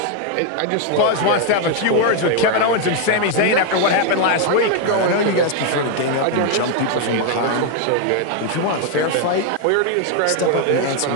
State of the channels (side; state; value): both; different; correlation 0.01